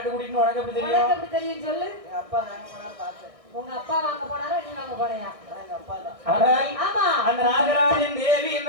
கூட்டின்னு உனக்கு எப்படி தெரியும்? உனக்கு எப்படி தெரியும் சொல்லு. எங்க அப்பா வாங்க போனாரு பார்த்தேன். உங்க அப்பா வாங்க போனாரா, நீ வாங்க போனியா? எங்க அப்பா தான். ஆனால் ஆமா. அந்த நாகராஜன் தேவி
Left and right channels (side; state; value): left; late; 1.6 ms